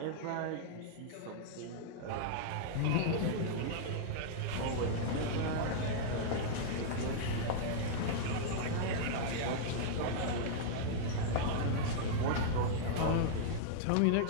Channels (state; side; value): different; both; correlation -0.01